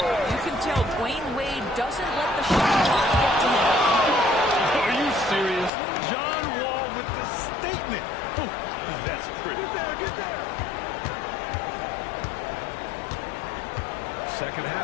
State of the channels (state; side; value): drops out; right; at 5.7 s